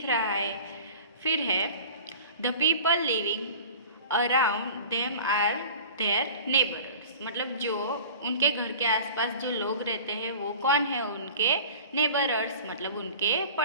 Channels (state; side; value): inverted; both; correlation -0.41